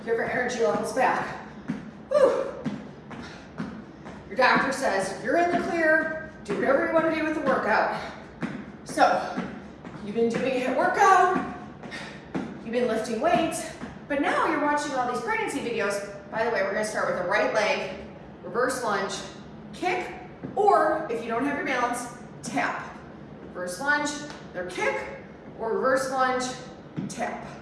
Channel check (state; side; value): identical; both; correlation 1.00